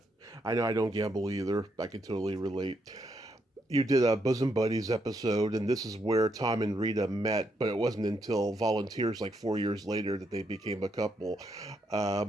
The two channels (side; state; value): both; normal; correlation 0.78